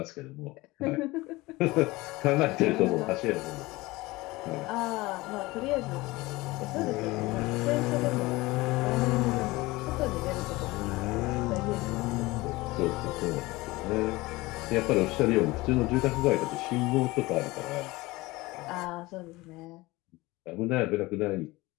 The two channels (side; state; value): right; quieter; 20.9 dB